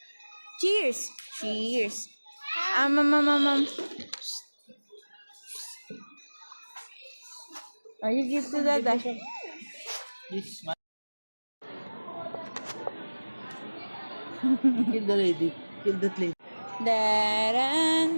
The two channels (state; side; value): inverted; both; correlation -1.00